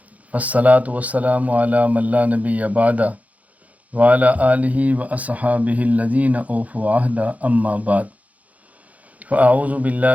والصلاة والسلام علی من لا نبی بعدہ وعلی آلہ واصحابہ الذین اوفوا عہدہ اما بعد فاعوذ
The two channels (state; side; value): late; left; 0.071 ms